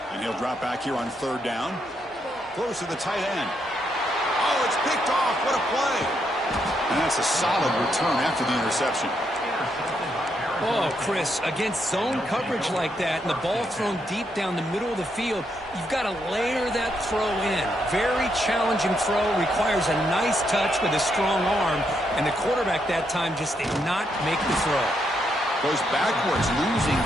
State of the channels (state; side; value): normal; both; correlation 0.78